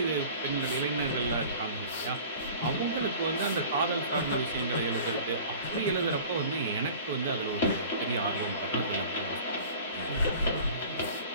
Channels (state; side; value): inverted; both; correlation -0.43